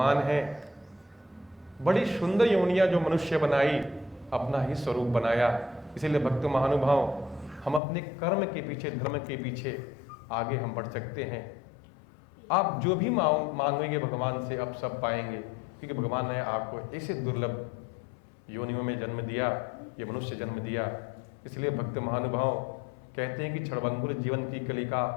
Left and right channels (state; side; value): drops out; right; at 7.8 s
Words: है, बड़ी सुंदर योनियां जो मनुष्य बनाई, अपना ही स्वरूप बनाया। इसलिए भक्त महानुभाव हम अपने कर्म के पीछे, धर्म के पीछे आगे हम बढ़ सकते हैं। आप जो भी मांगेंगे भगवान से आप सब पाएंगे, क्योंकि भगवान ने आपको ऐसे दुर्लभ योनियों में जन्म दिया, ये मनुष्य जन्म दिया। इसलिए भक्त महानुभाव कहते हैं कि क्षणभंगुर जीवन की कलिका